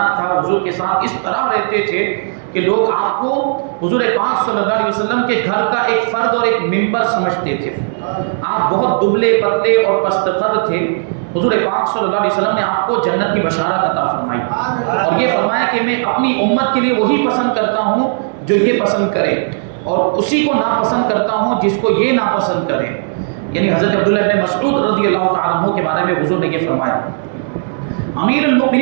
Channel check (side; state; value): left; silent; digital silence